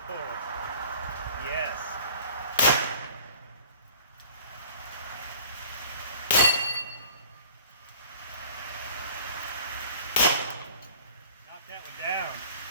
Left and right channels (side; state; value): both; inverted; correlation -0.48